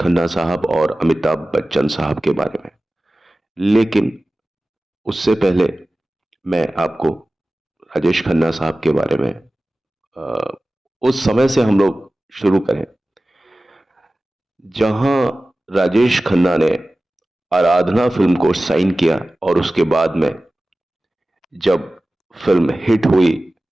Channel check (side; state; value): both; normal; correlation 0.96